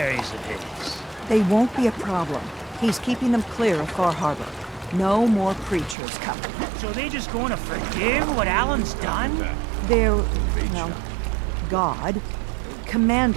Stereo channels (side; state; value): left; drops out; at 6.0 s